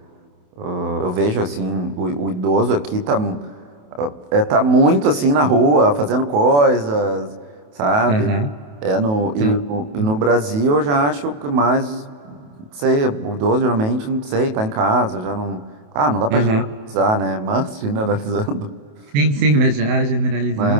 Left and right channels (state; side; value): late; left; 28 ms